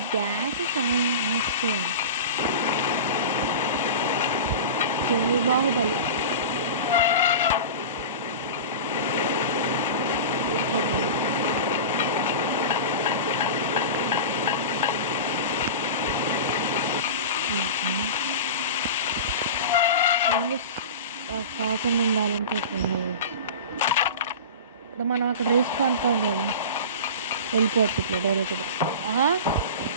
గ్యాస్ బాహుబలి కాకుండా ఉండాలంటే ఇప్పుడు మనం అక్కడ రిస్క్ అనుకోం కదా, వెళ్ళిపోవచ్చు ఇట్లా డైరెక్ట్గా.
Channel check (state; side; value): inverted; both; correlation -0.31